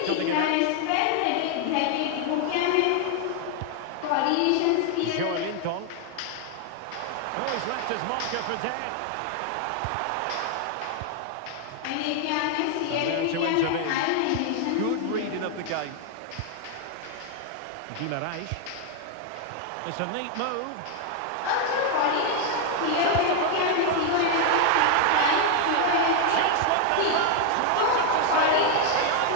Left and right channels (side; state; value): both; different; correlation 0.00